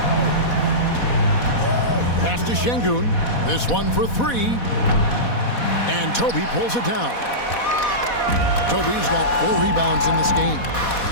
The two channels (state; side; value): late; right; 4.1 ms